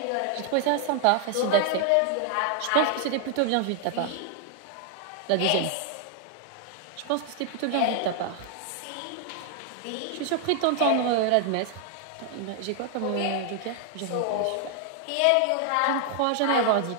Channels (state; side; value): different; both; correlation 0.00